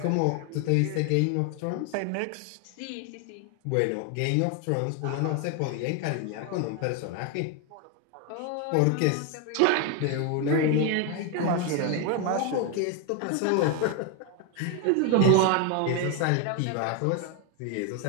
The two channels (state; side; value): different; both; correlation 0.01